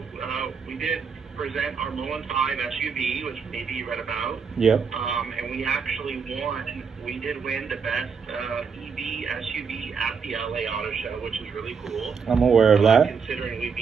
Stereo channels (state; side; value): quieter; left; 5.9 dB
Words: we did present our MULN 5 SUV, which maybe you read about. Yep. And we actually won. We did win the best EV SUV at the LA Auto Show, which is really cool. I'm aware of that. Considering we